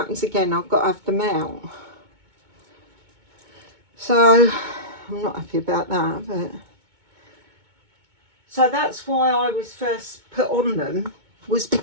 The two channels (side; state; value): left; late; 2.2 ms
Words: again, I've got to have them out. So I'm not happy about that, but... So that's why I was first put on them, was